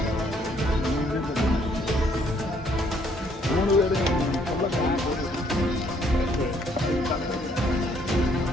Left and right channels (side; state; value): both; normal; correlation 0.67